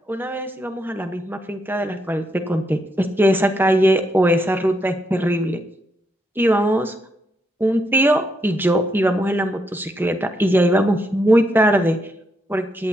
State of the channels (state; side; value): normal; both; correlation 0.79